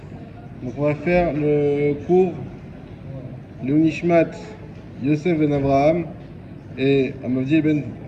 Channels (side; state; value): both; identical; correlation 1.00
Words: Donc on va faire le cours Leunishmat Yosef ben Abraham et Amavdiel ben